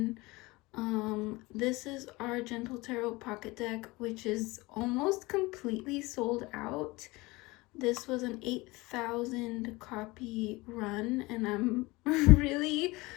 This is our Gentle Tarot pocket deck, which is almost completely sold out. This was an 8,000 copy run, and I'm really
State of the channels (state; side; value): quieter; right; 22.4 dB